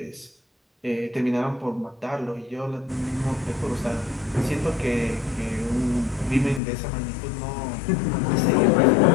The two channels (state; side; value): drops out; right; at 6.6 s